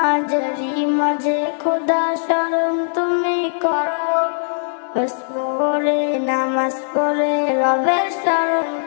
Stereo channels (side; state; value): right; silent; digital silence